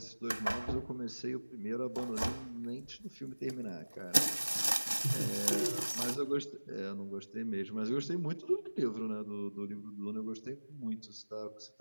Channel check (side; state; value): both; inverted; correlation -1.00